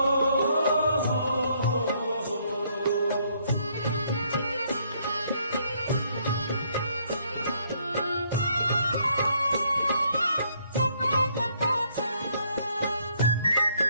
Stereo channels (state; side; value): inverted; both; correlation -0.68